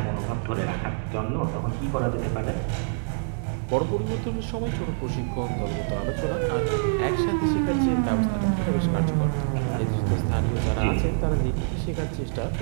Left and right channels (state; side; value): silent; left; digital silence